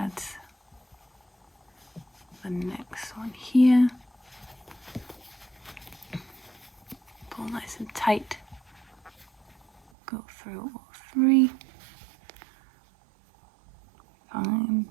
the next one here. Pull nice and tight. Go through all 3. Find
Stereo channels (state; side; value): drops out; left; at 9.8 s